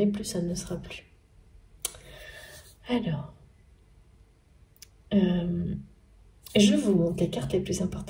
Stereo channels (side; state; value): both; identical; correlation 1.00